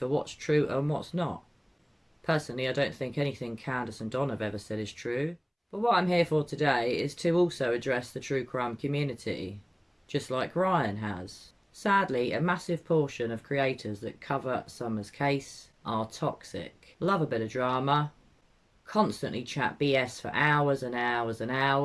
what's true and what's not. Personally, I don't think anything Candace and Don have ever said is true. But what I'm here for today is to also address the true crime community, just like Ryan has. Sadly, a massive portion of creators that cover Summer's case are toxic. Love a bit of drama, constantly chat BS for hours and hours and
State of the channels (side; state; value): both; identical; correlation 1.00